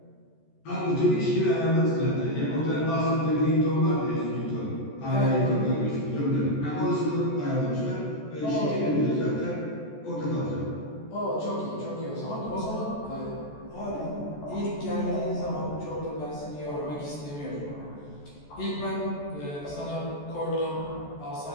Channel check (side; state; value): right; late; 14 ms